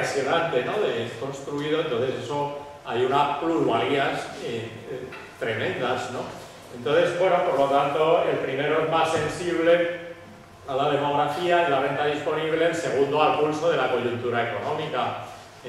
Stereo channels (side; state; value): both; identical; correlation 1.00